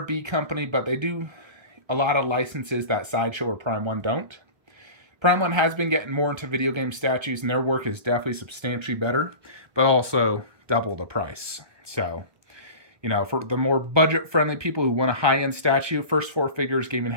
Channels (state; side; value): late; left; 1.2 ms